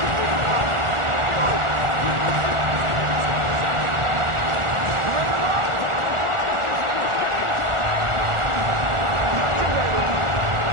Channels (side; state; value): left; late; 1.4 ms